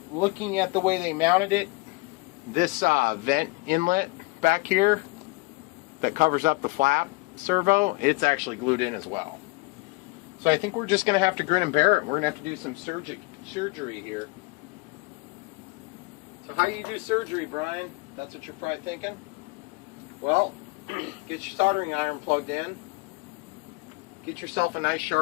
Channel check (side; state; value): right; quieter; 25.1 dB